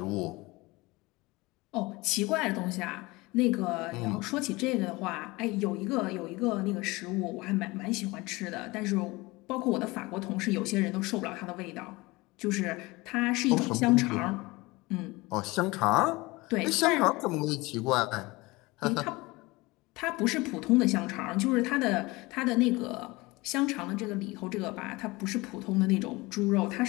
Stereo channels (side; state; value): right; quieter; 22.6 dB